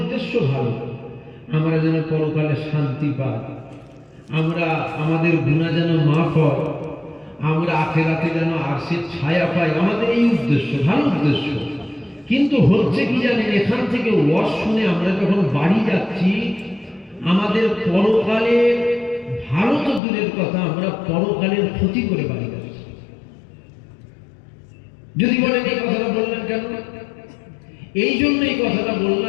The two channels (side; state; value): right; drops out; at 20.0 s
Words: ভালো, আমরা যেন পরকালে শান্তি পাই, আমরা আমাদের গুনাহ যেন মাফ হয়, আমরা আখিরাতে যেন আরশের ছায়া পাই, আমাদের এই উদ্দেশ্য, ভালো উদ্দেশ্য। কিন্তু হচ্ছে কি জানেন? এখান থেকে ওয়াজ শুনে আমরা যখন বাড়ি যাচ্ছি আমাদের পরকালে ভালো তো দূরের কথা, আমরা পরকালের ক্ষতি করে বাড়ি যাচ্ছি। যদি বলেন এই কথাটা বললেন কেন? এই জন্য এই কথাটা